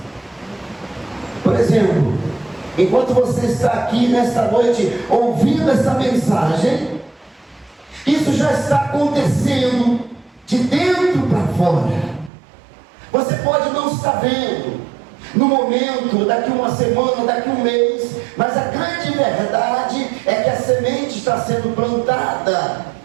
Por exemplo, enquanto você está aqui nesta noite ouvindo essa mensagem, isso já está acontecendo de dentro para fora. Você pode não estar vendo no momento, daqui uma semana, daqui um mês, mas a grande verdade é que a semente está sendo plantada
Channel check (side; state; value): left; drops out; at 12.3 s